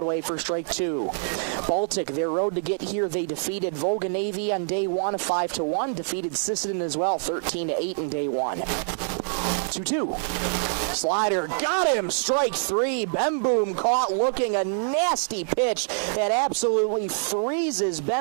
for strike 2. Baltic, their road to get here, they defeated Volga Navy on day 1, 5-1. Defeated Sisseton as well, 13-8 in day 1. 2-2. Slider got him. Strike 3. Bemboom caught looking a nasty pitch that absolutely freezes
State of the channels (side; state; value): left; silent; digital silence